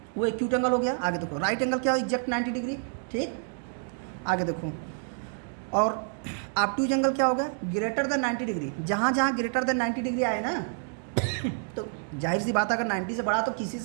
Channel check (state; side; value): silent; left; digital silence